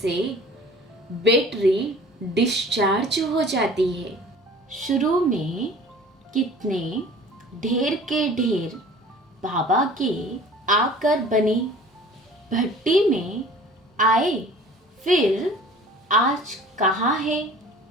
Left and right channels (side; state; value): both; normal; correlation 0.46